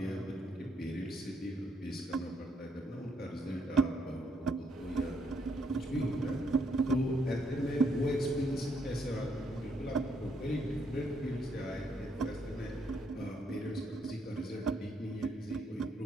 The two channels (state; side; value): normal; both; correlation 0.73